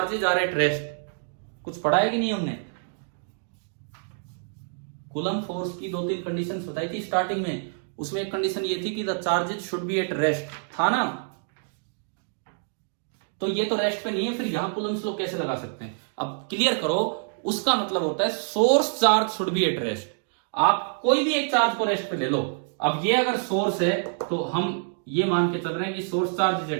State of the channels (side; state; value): left; silent; digital silence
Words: are at rest. कुछ पढ़ा है कि नहीं हमने? कूलम फोर्स की 2-3 कंडीशंस बताई थी स्टार्टिंग में, उसमें एक कंडीशन ये थी कि the charges should be at rest, था ना? तो ये तो रेस्ट पे नहीं है, फिर यहां कूलम्स लॉ कैसे लगा सकते हैं? अब क्लियर करो, उसका मतलब होता है source charge should be at rest. आप कोई भी एक चार्ज को रेस्ट पे ले लो। अब ये अगर सोर्स है तो हम ये मान के चल रहे हैं कि source charge is